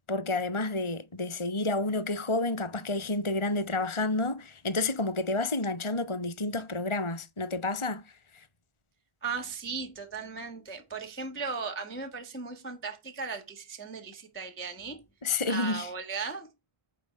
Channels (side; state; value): right; late; 1.4 ms